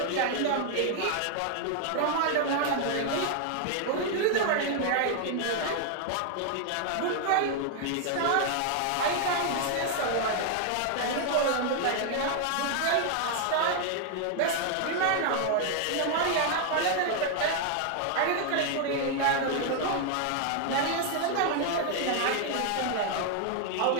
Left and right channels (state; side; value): different; both; correlation 0.00